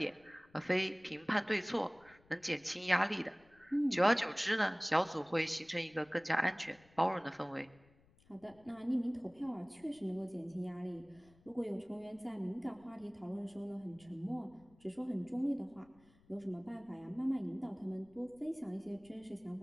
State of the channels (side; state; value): left; noise; rumble, 29 dB below the sound